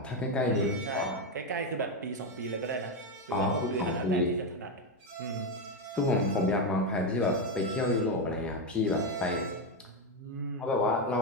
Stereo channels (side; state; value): both; normal; correlation 0.09